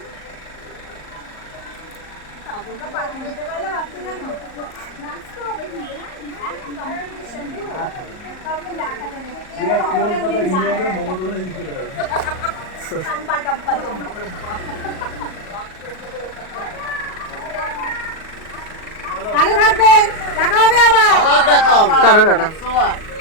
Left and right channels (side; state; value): right; late; 38 ms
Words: কলকাতা হিন্দুদের মমতা ব্যানার্জি চলে যাবে ভালো থাকবেন দেখা হবে আবার আবার দেখাও টাটা টাটা।